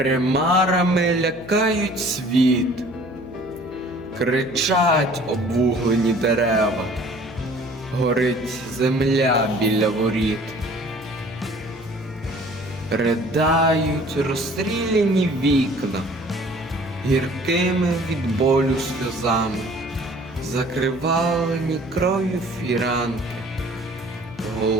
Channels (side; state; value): left; noise; hum, 20 dB below the sound